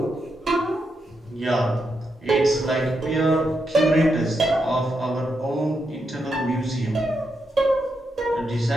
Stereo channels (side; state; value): both; normal; correlation 0.83